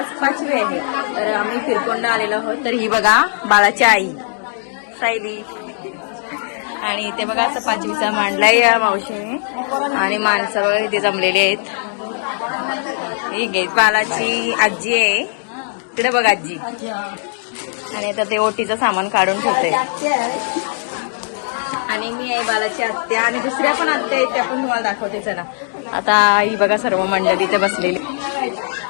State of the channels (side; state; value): right; silent; digital silence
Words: 5वी आहे. तर आम्ही फिरकोंडा आलेलो आहोत. तर ही बघा बाळाची आई सायली, आणि इथे बघा असं 5वीचा मांडलाय या मावशीने, आणि माणसं बघा इथे जमलेली आहेत. ही घे बाळाची आजी आहे तिकडे बघा आजी, आणि आता ते ओटीचं सामान काढून ठेवते. आणि मी आहे बालाची आत्या, आणि दुसऱ्या पण आत्या आहेत त्या पण तुम्हाला दाखवते. चला आता ही बघा सर्व मंडळी इथे बसलेली.